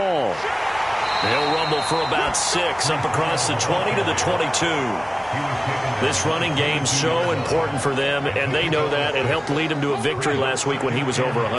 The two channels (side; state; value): both; identical; correlation 1.00